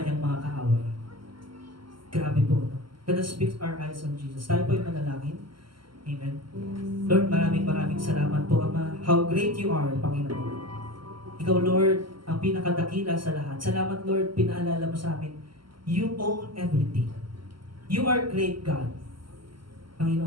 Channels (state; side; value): late; left; 0.73 ms